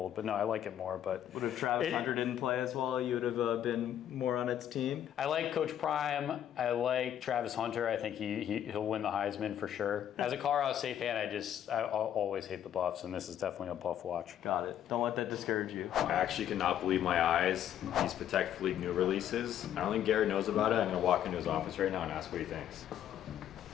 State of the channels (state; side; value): quieter; right; 10.5 dB